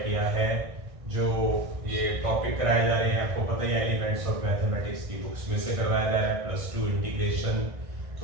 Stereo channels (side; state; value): left; late; 1.6 ms